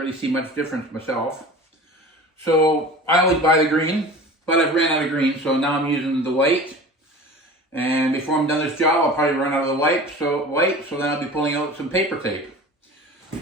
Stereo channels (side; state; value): both; normal; correlation 0.38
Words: see much difference myself. So I always buy the green, but I've ran out of green, so now I'm using the white. And before I'm done this job, I'll probably run out of the white, so then I'll be pulling out some paper tape.